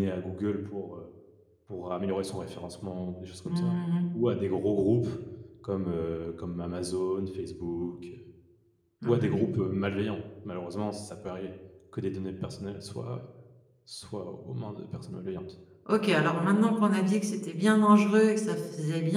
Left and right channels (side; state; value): both; identical; correlation 1.00